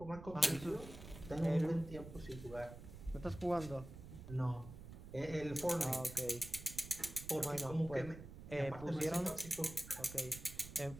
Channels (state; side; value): noise; right; rumble, 13 dB below the sound